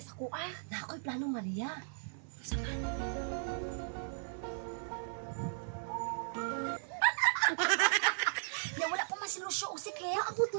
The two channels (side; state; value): left; silent; 53 dB below the other